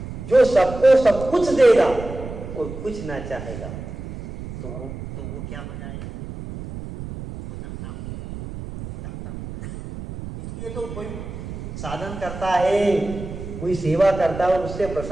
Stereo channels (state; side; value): noise; right; rumble, 10 dB below the sound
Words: जो सबको सब कुछ देगा और कुछ ना चाहेगा तो वो क्या हो जाएगा? वो दाता हो जाएगा। इसलिए तो कोई साधन करता है, कोई सेवा करता है और उससे